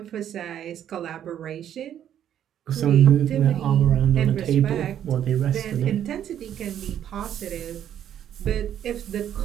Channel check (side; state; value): left; quieter; 10.2 dB